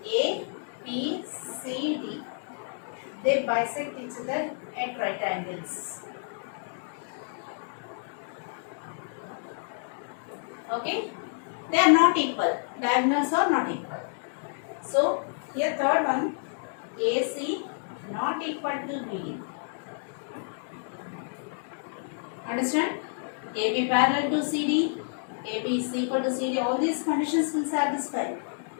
A, B, C, D, they bisect each other at right angles. Okay? They are not equal. Diagonals are not equal. So, here third one, AC not equal to BD. Understand? AB parallel to CD, AB is equal to CD. All these conditions will satisfy.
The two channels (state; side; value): silent; right; digital silence